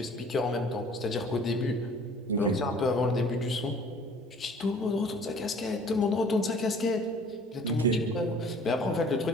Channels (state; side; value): normal; both; correlation 0.52